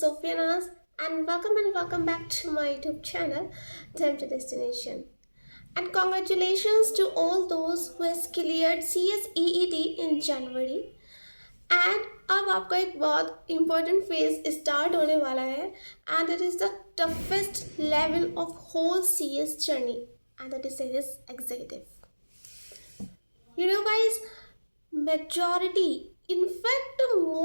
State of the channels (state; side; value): inverted; both; correlation -1.00